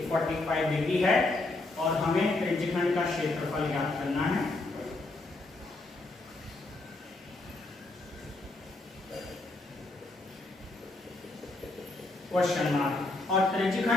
45 डिग्री है, और हमें त्रिज्यखंड का क्षेत्रफल ज्ञात करना है। Question mark. और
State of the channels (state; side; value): quieter; right; 3.0 dB